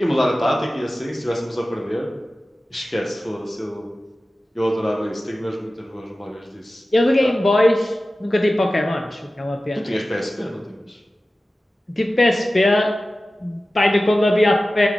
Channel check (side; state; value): both; normal; correlation 0.95